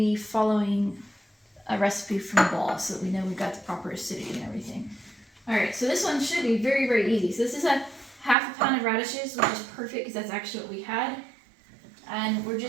following a recipe from the ball so that we know we've got the proper acidity and everything. All right, so this one should be very, very easy. So this is a half a pound of radishes, which is perfect because that's actually what we had. And we're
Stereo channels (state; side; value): drops out; left; at 8.3 s